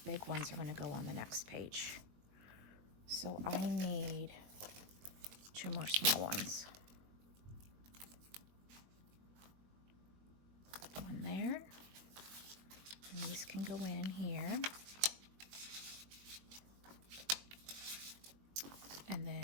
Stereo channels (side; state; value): left; late; 21 ms